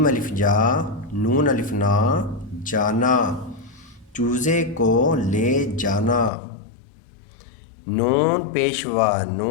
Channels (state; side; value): drops out; right; at 6.3 s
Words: अलिफ जा, नून अलिफ ना जाना, चूजे को ले जाना, नून पेशवा